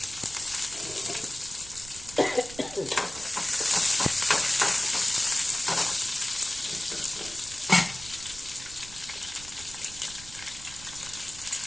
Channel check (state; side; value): noise; right; rumble, 16 dB below the sound